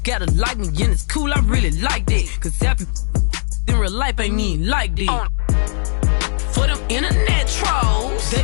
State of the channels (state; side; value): silent; right; digital silence